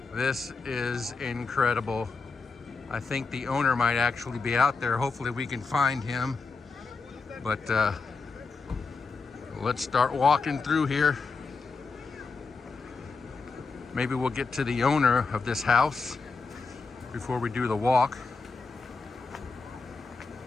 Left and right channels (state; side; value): quieter; right; 4.4 dB